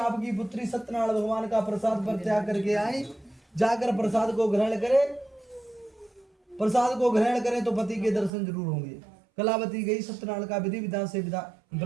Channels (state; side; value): drops out; left; at 8.3 s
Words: पुत्री सत्यनारायण भगवान का प्रसाद पर त्याग करके आई। जाकर प्रसाद को ग्रहण करें तो पति के दर्शन जरूर होंगे। कलावती गई, सत्यनारायण का विधि विधान से